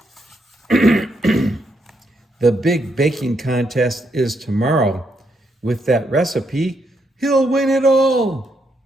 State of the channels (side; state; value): both; normal; correlation 0.78